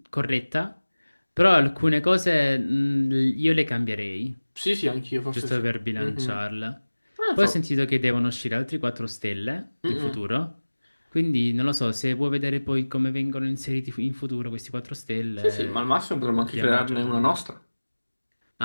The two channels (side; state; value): both; inverted; correlation -1.00